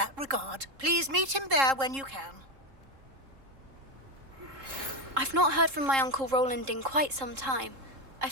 regard. Please meet him there when you can. I've not heard from my Uncle Roland in quite some time.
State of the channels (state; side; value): late; left; 3.7 ms